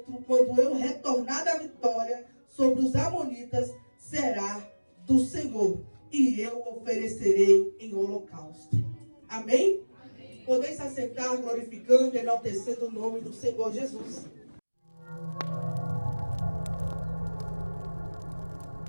quando eu retornar da vitória sobre os amonitas, será do Senhor, e eu oferecerei em holocausto. Amém? Amém. Podeis se assentar, glorificando e enaltecendo o nome do Senhor Jesus.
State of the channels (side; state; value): both; inverted; correlation -1.00